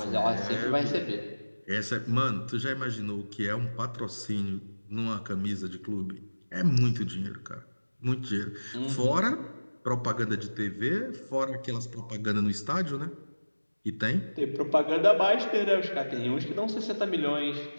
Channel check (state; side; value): inverted; both; correlation -1.00